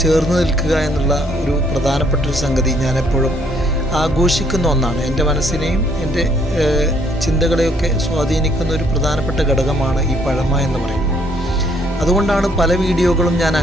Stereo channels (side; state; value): both; normal; correlation 0.66